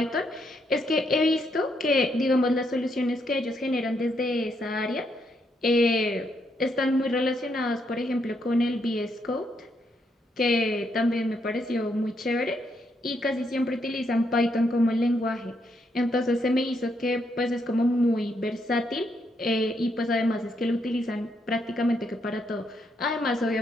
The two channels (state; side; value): normal; both; correlation 0.77